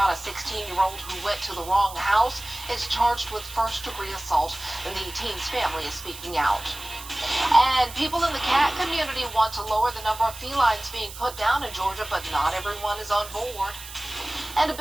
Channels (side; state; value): right; noise; hiss, 14 dB below the sound